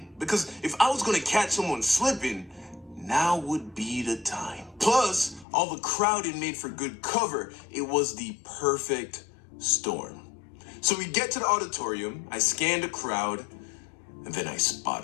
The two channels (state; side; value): drops out; right; at 5.5 s